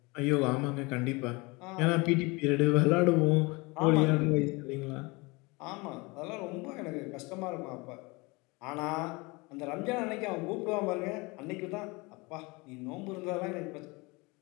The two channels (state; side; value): quieter; right; 25.9 dB